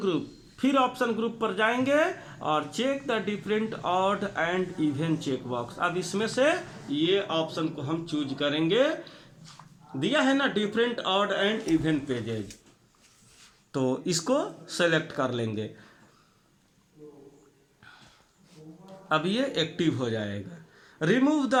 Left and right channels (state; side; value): identical; both; correlation 1.00